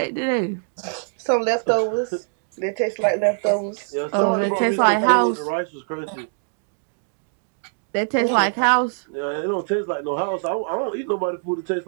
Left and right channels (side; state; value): left; silent; digital silence